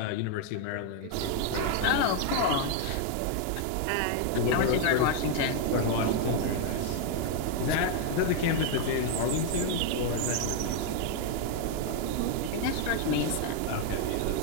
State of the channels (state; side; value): different; both; correlation 0.00